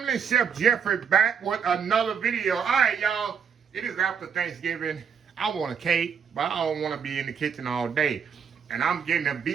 Chef Jeffrey back with another video. All right, y'all. It is after Thanksgiving. I want a cake, but I don't want to be in the kitchen all day. And I'm getting a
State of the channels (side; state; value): left; quieter; 6.9 dB